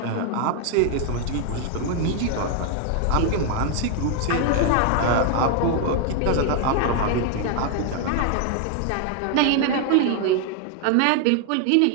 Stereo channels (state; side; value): different; both; correlation 0.00